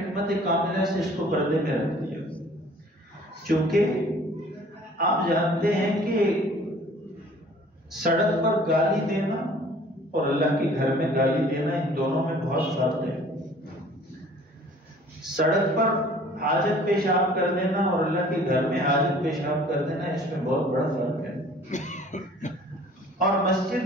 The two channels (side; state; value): both; normal; correlation 0.52